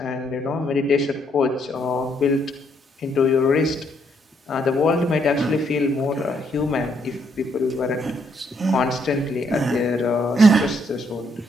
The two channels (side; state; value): both; normal; correlation 0.72